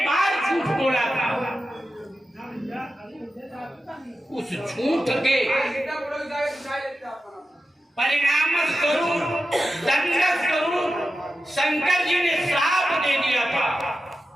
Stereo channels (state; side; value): normal; both; correlation 0.91